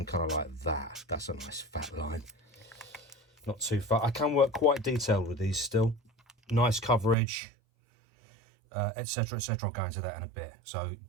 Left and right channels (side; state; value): left; drops out; at 7.2 s